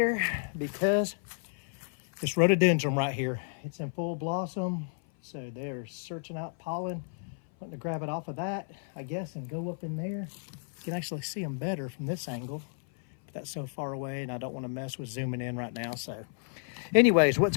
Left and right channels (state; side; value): silent; right; 56 dB below the other